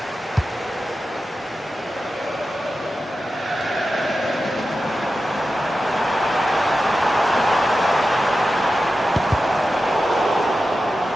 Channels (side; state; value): both; normal; correlation 0.92